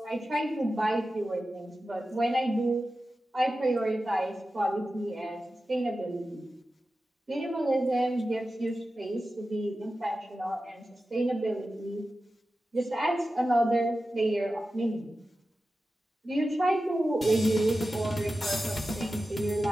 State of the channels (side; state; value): both; normal; correlation 0.93